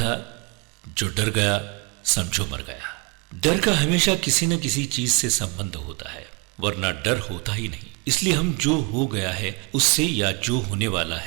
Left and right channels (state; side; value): quieter; left; 30.5 dB